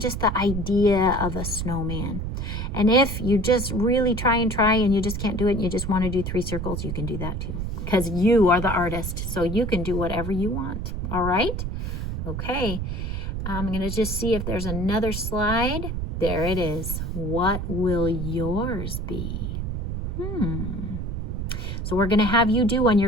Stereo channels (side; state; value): right; noise; rumble, 4 dB below the sound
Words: the idea of a snowman. And if you just really try and you just can't do it and you just want to do 3 circles, you can do that too, because you are the artist, so you can do whatever you want. All right? Okay. I'm going to just see if there's another slide. There it is. What will yours be? So we're going to have you do one.